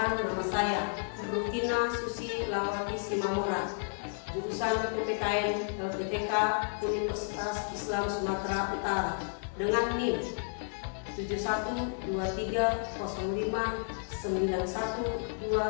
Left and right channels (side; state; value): right; silent; 56 dB below the other